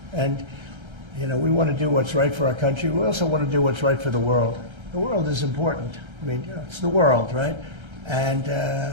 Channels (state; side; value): late; left; 1.3 ms